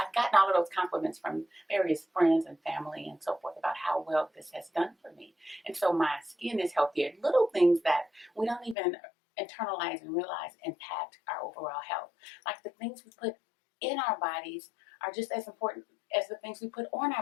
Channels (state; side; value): drops out; right; at 8.8 s